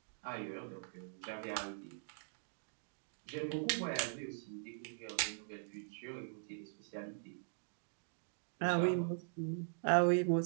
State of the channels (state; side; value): silent; left; digital silence